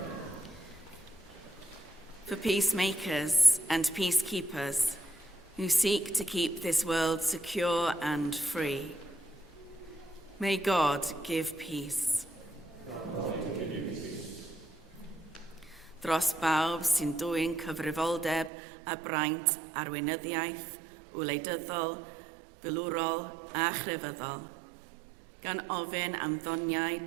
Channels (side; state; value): left; drops out; at 18.5 s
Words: For peacemakers and peacekeepers who seek to keep this world secure and free, may God give peace. Dros bawb sy'n dwyn cyfrifoldeb a braint arweinyddiaeth, wleidyddol, filwrol a chrefyddol, gan ofyn am ddoniau